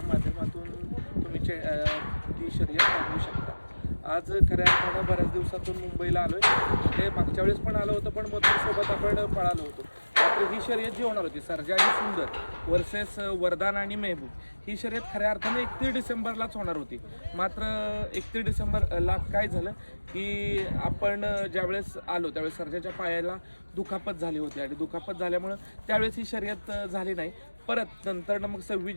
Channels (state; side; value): inverted; both; correlation -1.00